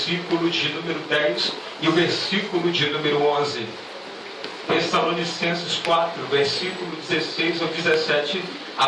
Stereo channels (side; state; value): both; identical; correlation 1.00